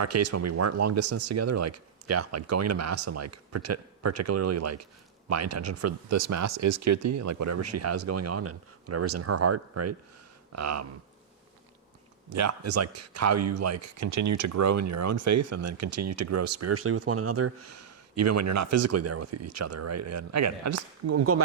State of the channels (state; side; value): quieter; left; 7.9 dB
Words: case, when we weren't long distance together, like, like going to mass and like particularly like my intention for this mass is Keerthy and like whatever she has going on and whatever's in her heart, right? Is like how you like continue to grow in your own faith and then continue to grow spiritually with one another, even when you're not physically there with each other, right? And again, I'm going